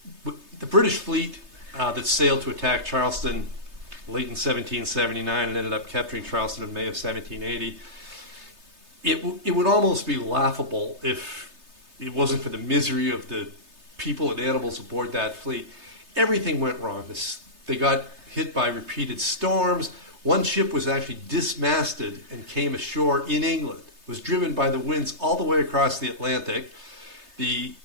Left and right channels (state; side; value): late; left; 3.3 ms